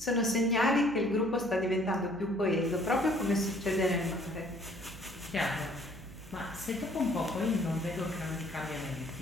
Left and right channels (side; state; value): right; noise; hum, 17 dB below the sound